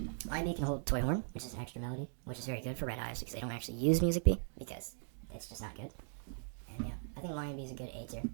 Lion bee can hold toy horn, which is an extra melody, which is very good for red hives because they don't actually use music bee because that's just not good. And yeah, I think lion bee is a good A tier.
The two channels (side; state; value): left; silent; digital silence